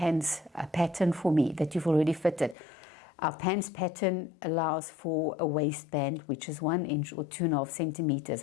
pattern for me that you've already fitted, our pants pattern allows for a waistband which is 1 inch or 2.5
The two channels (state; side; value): drops out; right; at 2.6 s